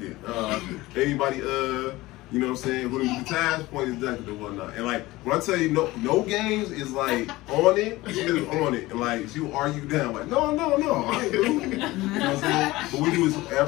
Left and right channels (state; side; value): quieter; right; 19.1 dB